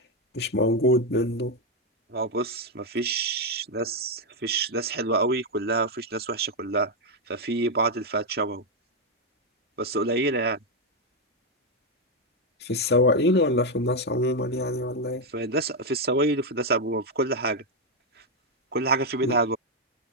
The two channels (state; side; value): normal; both; correlation 0.03